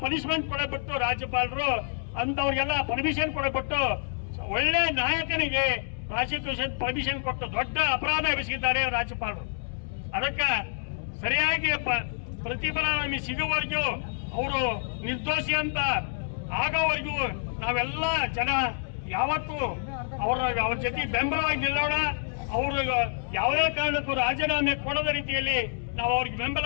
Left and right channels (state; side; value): silent; right; digital silence